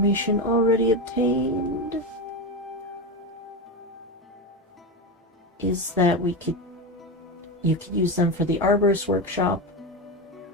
already obtained is that you could use them for the arborist workshop,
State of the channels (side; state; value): both; normal; correlation 0.17